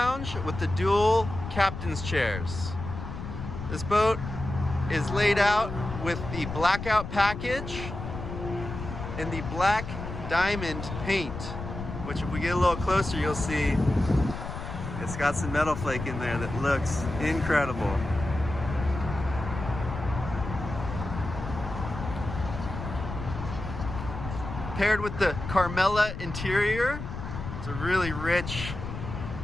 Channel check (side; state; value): left; noise; rumble, 8 dB below the sound